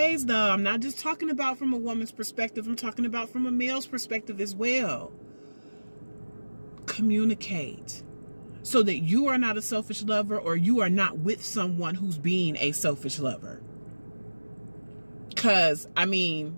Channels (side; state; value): both; inverted; correlation -1.00